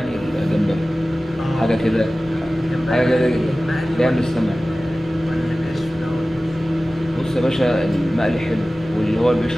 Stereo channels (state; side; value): normal; both; correlation 0.96